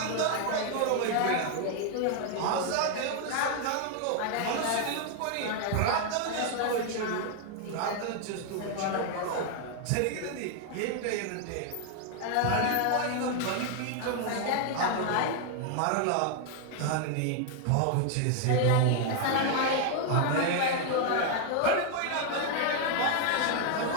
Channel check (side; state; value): both; different; correlation 0.00